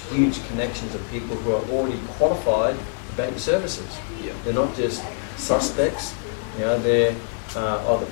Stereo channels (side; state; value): right; silent; 63 dB below the other